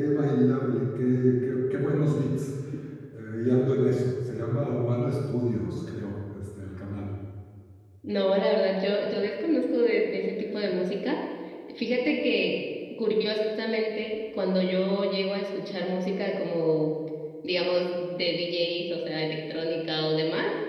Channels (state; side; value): identical; both; correlation 1.00